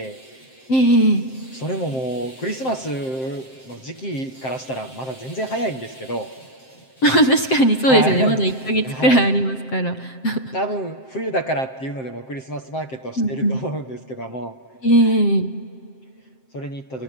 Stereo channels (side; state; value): right; late; 7.6 ms